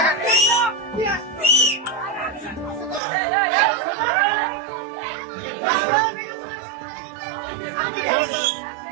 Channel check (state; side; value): drops out; left; at 3.0 s